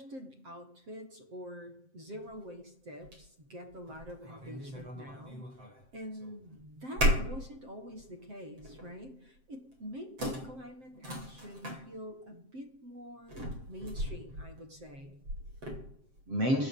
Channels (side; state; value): left; late; 7.6 ms